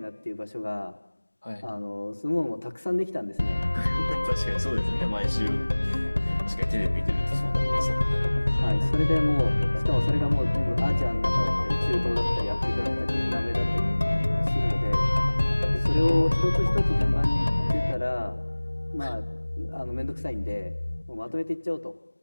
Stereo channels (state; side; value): inverted; both; correlation -1.00